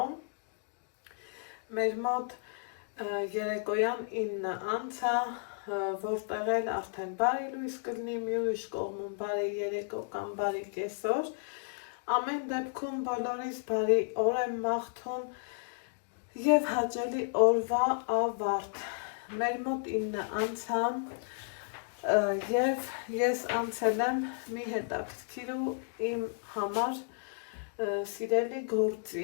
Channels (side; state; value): right; silent; digital silence